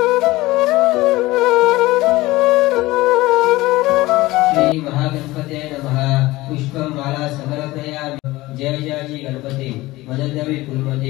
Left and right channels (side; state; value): right; quieter; 19.1 dB